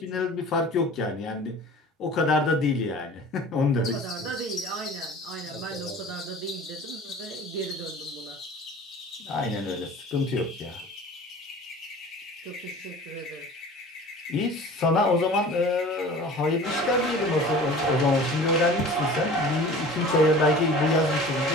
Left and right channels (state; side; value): normal; both; correlation 0.42